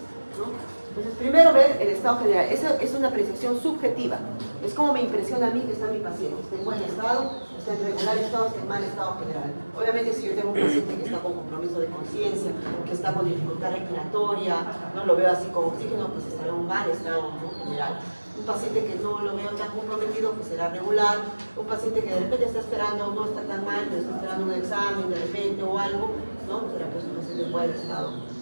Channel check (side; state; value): both; inverted; correlation -1.00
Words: ¿no? Entonces, primero ver el estado general. Esa es una apreciación subjetiva. Es como me impresiona a mí que está mi paciente. Está en buen estado, está en regular estado, está en mal estado general. Obviamente, si yo tengo un paciente que está con compromiso de conciencia, que está con dificultad respiratoria, no lo veo así con oxígeno, pues estará en un mal estado, ¿no? General. Un paciente que no lo veo tan comprometido, pues será regular. Un paciente que de repente está esperando, no está tan mal, pero está esperando un examen de repente o algo, ¿no? Será pues un paciente en buen estado